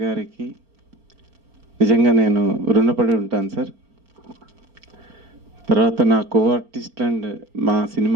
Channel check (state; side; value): late; left; 4.4 ms